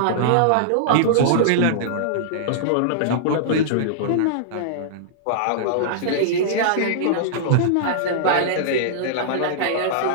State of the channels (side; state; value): both; different; correlation -0.02